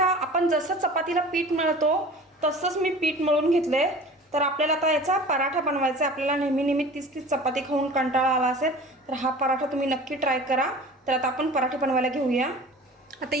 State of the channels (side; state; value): both; normal; correlation 0.41